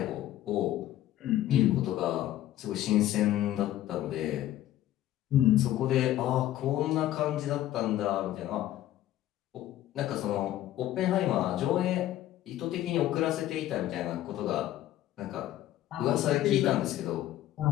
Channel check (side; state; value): right; quieter; 13.5 dB